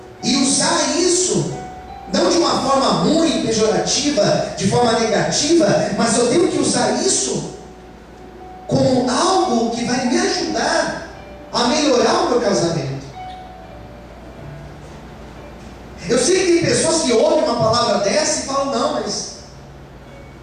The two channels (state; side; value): identical; both; correlation 1.00